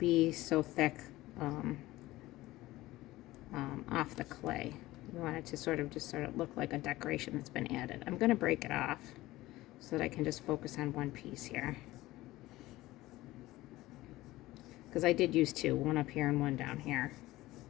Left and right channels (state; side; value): quieter; right; 17.6 dB